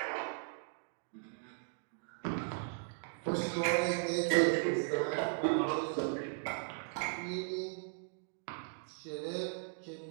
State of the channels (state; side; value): silent; left; 53 dB below the other